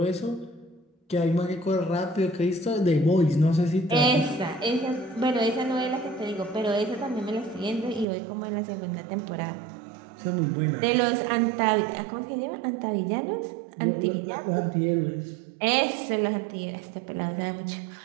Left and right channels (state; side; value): drops out; left; at 8.1 s